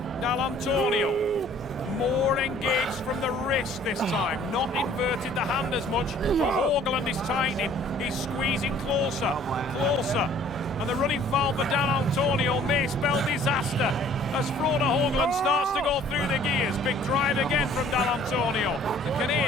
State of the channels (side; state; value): left; noise; hum, 24 dB below the sound